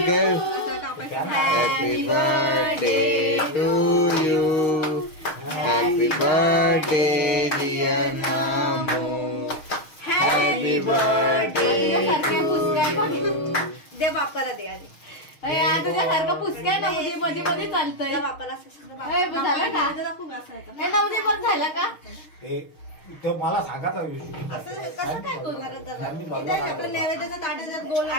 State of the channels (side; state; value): right; late; 6.5 ms